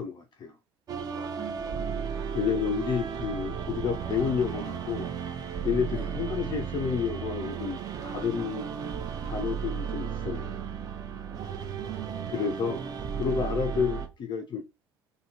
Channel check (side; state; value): both; normal; correlation 0.49